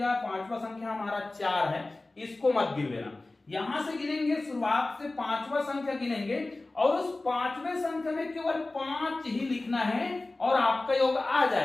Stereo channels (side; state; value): right; quieter; 3.0 dB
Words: 5वां संख्या हमारा 4 है, इसको मत गिन लेना। यहां से गिनेंगे, शुरुआत से 5वां संख्या गिनेंगे और उस 5वें संख्या में केवल 5 ही लिखना है और आपका योग आ